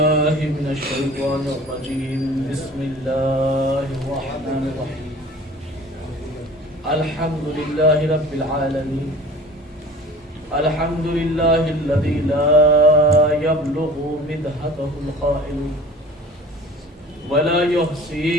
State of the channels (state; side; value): normal; both; correlation 0.43